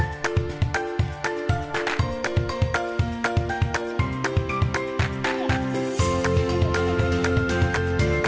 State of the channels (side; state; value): both; identical; correlation 1.00